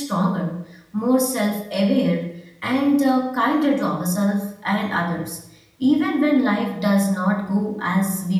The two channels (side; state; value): both; identical; correlation 1.00